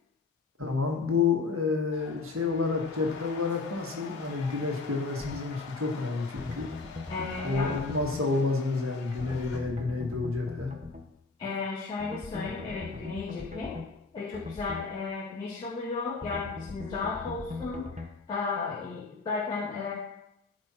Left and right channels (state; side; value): quieter; right; 3.9 dB